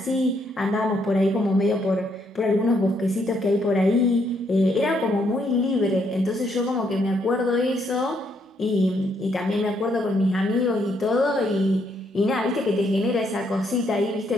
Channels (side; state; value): both; normal; correlation 0.73